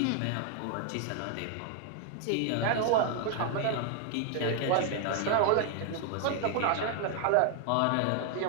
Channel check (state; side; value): different; both; correlation 0.00